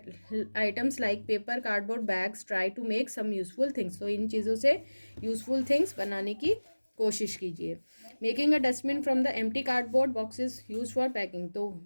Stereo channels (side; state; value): both; inverted; correlation -1.00